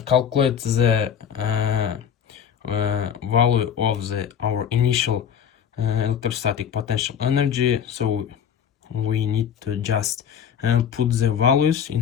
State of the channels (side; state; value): right; quieter; 8.3 dB